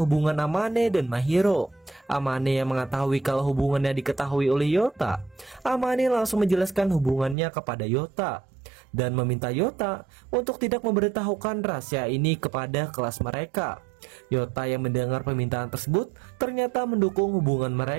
hubungan Amane dan Mahiro. Amane yang mengetahui kalau hubungannya diketahui oleh Yota, Amane langsung menjelaskan hubungannya kepada Yota dan meminta Yota untuk tidak memberitahukan rahasia ini kepada kelas mereka. Yota yang mendengar permintaan tersebut ternyata mendukung hubungan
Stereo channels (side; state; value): left; drops out; at 7.4 s